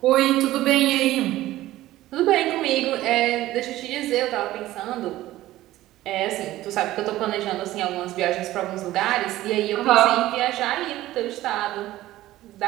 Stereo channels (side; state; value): left; quieter; 15.6 dB